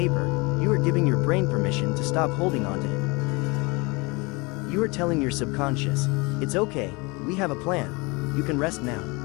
you are giving your brain permission to stop holding on to it. You are telling your subconscious, it's okay, we have a plan, you can rest now.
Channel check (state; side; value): quieter; right; 26.9 dB